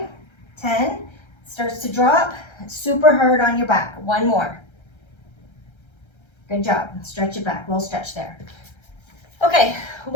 10, starts to drop, super hard on your back. One more. Good job. Stretch it back, little stretch there. Okay,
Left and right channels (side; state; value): right; late; 1.3 ms